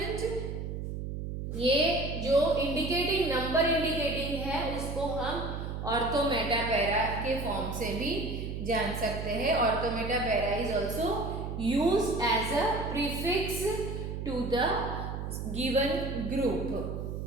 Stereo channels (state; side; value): noise; right; hum, 5 dB below the sound